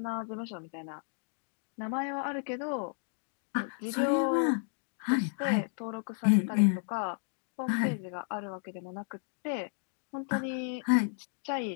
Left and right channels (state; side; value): silent; right; digital silence